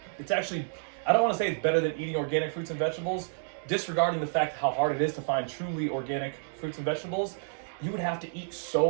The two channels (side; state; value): left; silent; 58 dB below the other